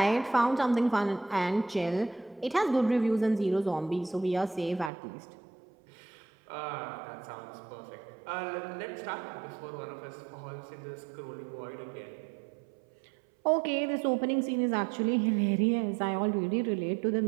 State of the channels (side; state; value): left; drops out; at 4.9 s